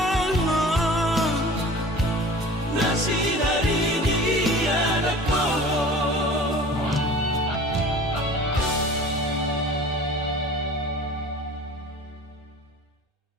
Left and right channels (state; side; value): normal; both; correlation 0.42